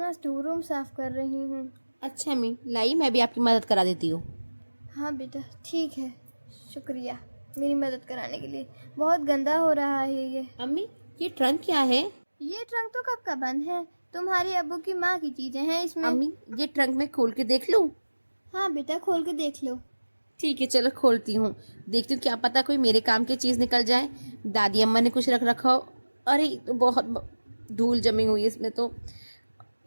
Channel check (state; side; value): inverted; both; correlation -1.00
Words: स्टोर रूम साफ कर रही हूँ। अच्छा अम्मी, लाई मैं भी आपकी मदद करा देती हूँ। हाँ बेटा ठीक है, शुक्रिया मेरी मदद कराने के लिए। बहुत गंदा हो रहा है ये। अम्मी ये ट्रंक क्या है? ये ट्रंक तो कब का बंद है, तुम्हारी अब्बू की माँ की चीजें हैं इसमें। अम्मी ये ट्रंक मैं खोल के देख लूँ? हाँ बेटा खोल के देख लो। ठीक है चलो खोलती हूँ, देखती हूँ क्या पता कोई मेरे काम की चीज़ निकल जाए। दादी अम्मा ने कुछ रख रखा हो। अरे ये तो बहुत धूल जमी हुई है इसमें तो।